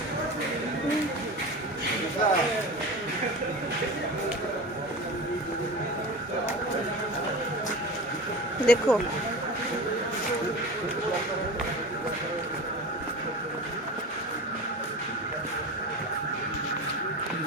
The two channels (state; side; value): normal; both; correlation 0.31